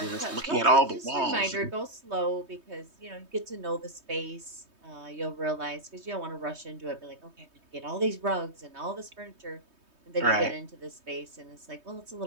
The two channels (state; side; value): late; left; 3.2 ms